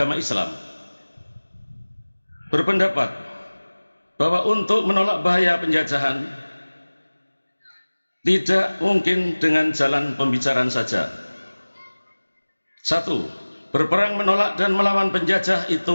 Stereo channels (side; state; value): both; inverted; correlation -1.00